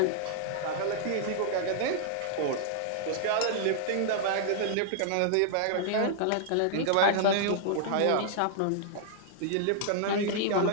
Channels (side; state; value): both; different; correlation -0.01